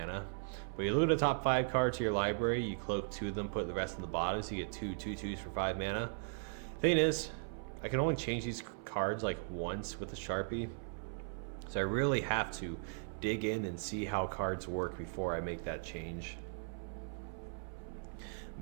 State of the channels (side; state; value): left; silent; 53 dB below the other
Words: But you look at the top 5 cards to your library, you cloak 2 of them, put the rest in the bottom, so you get 2 2/2s for 5 mana. Thing is, I can only change these cards like once with the Sharpie. So I really have to dig in and see how cards work before I make that change.